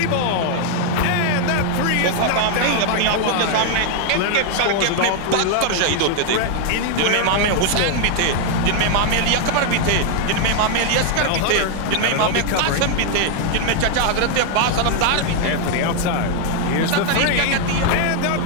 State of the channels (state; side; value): different; both; correlation 0.00